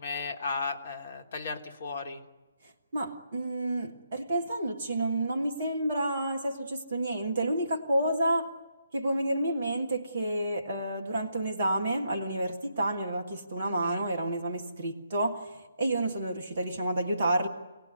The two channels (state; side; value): inverted; both; correlation -0.77